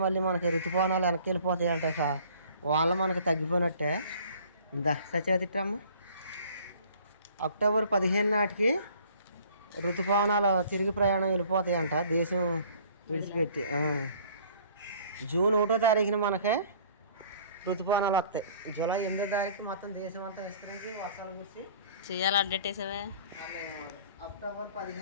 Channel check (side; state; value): both; inverted; correlation -0.53